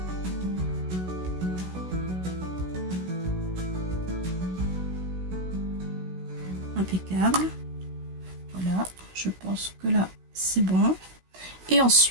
Impeccable. Voilà, je pense que là c'est bon. Et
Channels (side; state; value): left; late; 16 ms